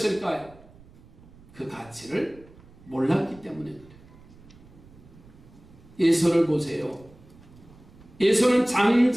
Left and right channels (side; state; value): right; noise; rumble, 23 dB below the sound